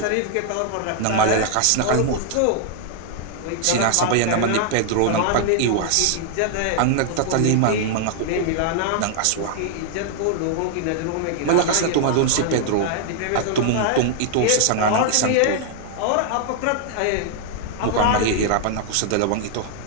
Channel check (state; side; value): different; both; correlation 0.00